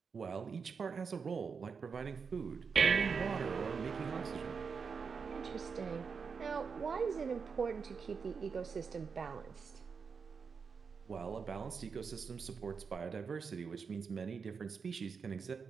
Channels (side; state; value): left; quieter; 5.6 dB